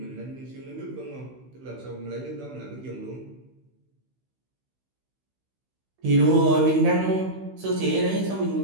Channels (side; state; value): left; late; 16 ms